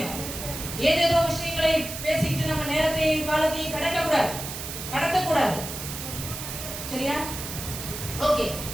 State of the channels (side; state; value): right; noise; hiss, 8 dB below the sound